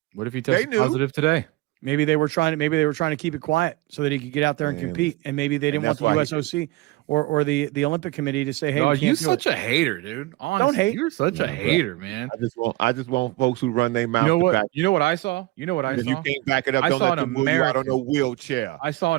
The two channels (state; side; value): quieter; left; 19.9 dB